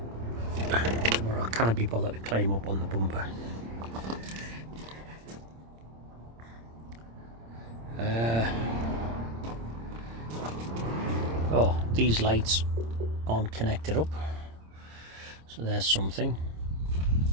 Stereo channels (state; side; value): late; left; 26 ms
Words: tomorrow. I can't be bothered to climb up on the bumper. Oh, these lights aren't connected up, so there's something.